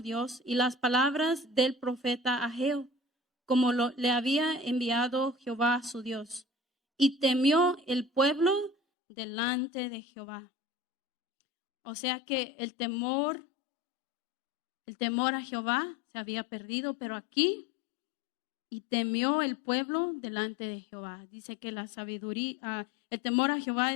y las palabras del profeta Ageo, como le había enviado Jehová su Dios. Y temió el pueblo delante de Jehová. O sea que el temor a Jehová se había perdido, pero aquí, y temió el pueblo delante de Jehová. Dice que la sabiduría, el temor a Jehová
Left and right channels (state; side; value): drops out; right; at 8.8 s